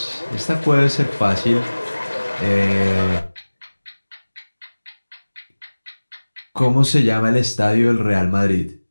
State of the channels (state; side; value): inverted; both; correlation -1.00